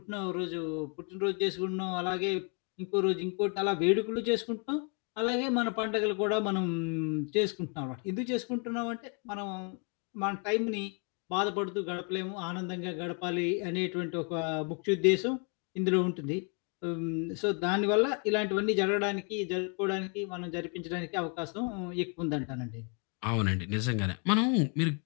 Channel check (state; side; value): quieter; right; 38.5 dB